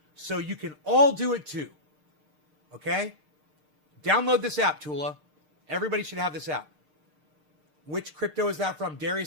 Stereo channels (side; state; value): left; late; 6.6 ms